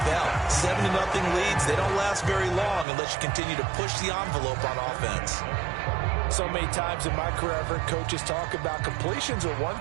7-0 leads, they don't last very long unless you continue to push the envelope on offense. So many times in my career, I've heard coaches talk about completions are one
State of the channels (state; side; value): drops out; left; at 2.9 s